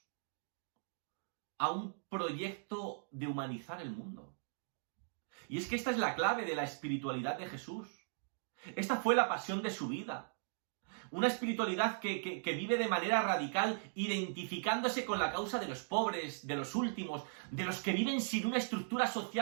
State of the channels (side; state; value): left; silent; digital silence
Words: a un proyecto de humanizar el mundo. Y es que esta es la clave de la espiritualidad de Jesús. Esta fue la pasión de su vida. Una espiritualidad que vive de manera radical, identificándose con la causa de los pobres, de los últimos, de los que viven sin una estructura